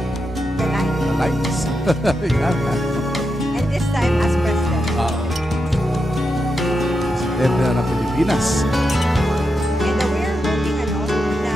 The 9th. nights. Yan. And this time as president. Presidente ng Pilipinas. And we're hoping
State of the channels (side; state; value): both; normal; correlation 0.86